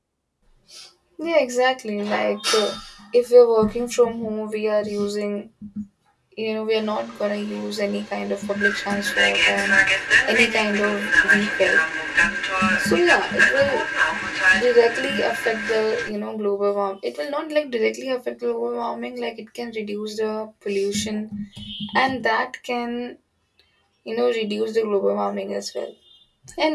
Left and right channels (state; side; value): identical; both; correlation 1.00